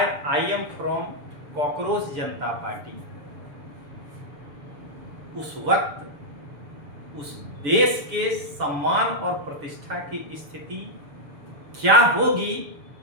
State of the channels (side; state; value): left; late; 7.0 ms